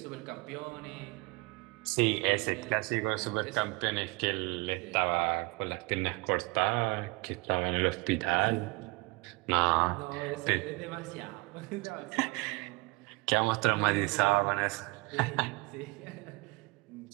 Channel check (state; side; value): quieter; left; 26.3 dB